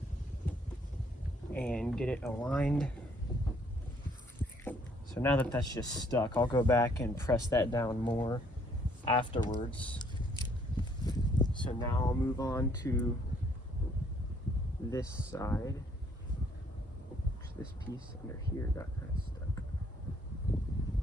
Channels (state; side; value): normal; both; correlation 0.65